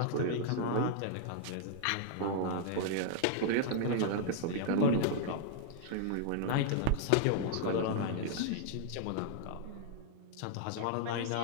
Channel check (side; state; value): both; different; correlation -0.01